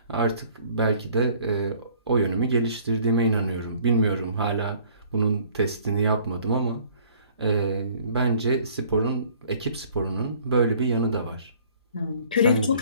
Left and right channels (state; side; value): inverted; both; correlation -0.56